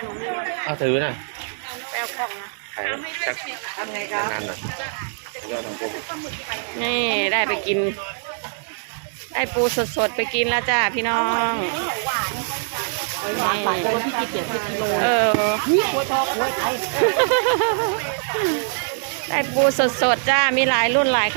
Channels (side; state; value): left; silent; digital silence